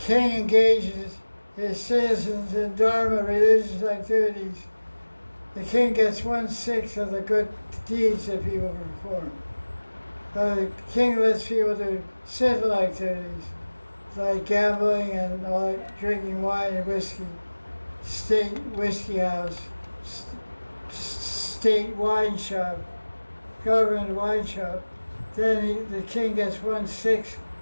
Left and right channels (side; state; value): both; inverted; correlation -1.00